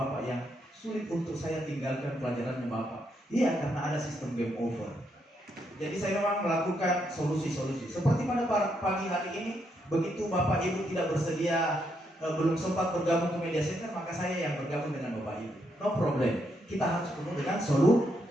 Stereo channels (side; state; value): both; normal; correlation 0.78